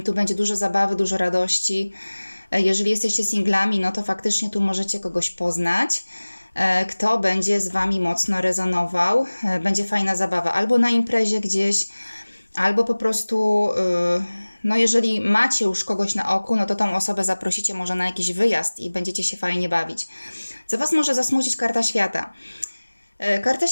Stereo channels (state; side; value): inverted; both; correlation -1.00